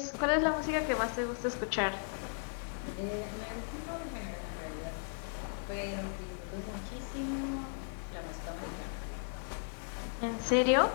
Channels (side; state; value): right; silent; digital silence